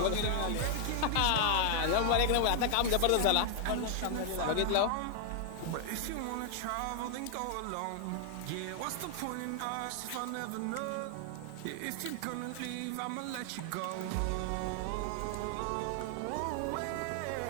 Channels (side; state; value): both; different; correlation 0.00